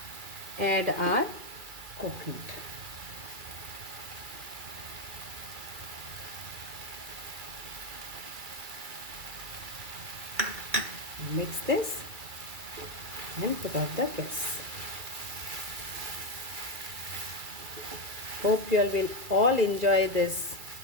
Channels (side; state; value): left; late; 2.3 ms